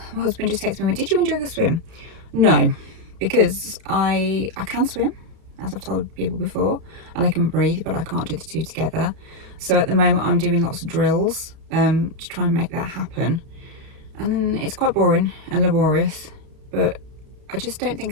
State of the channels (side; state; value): left; late; 32 ms